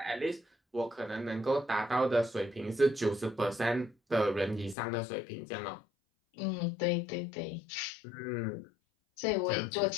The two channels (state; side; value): drops out; right; at 4.8 s